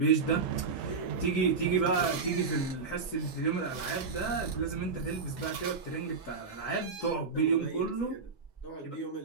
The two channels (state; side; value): quieter; left; 4.7 dB